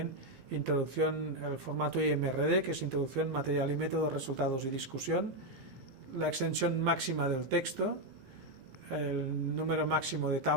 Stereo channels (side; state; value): left; late; 17 ms